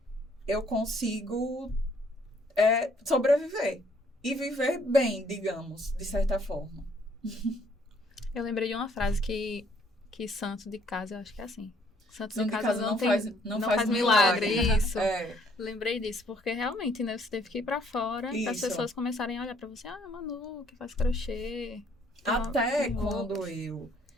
eu consigo sobreviver. E viver bem, digamos, de certa forma. Eu lembrei de uma frase que santo de casa, eu acho que é assim. Santo de casa não faz milagre. Isso. Lembrei disso, porque realmente, né, você teve que ir pra fora para as pessoas começarem a olhar pra você. Manu, que faz crochê. Até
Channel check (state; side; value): normal; both; correlation 0.64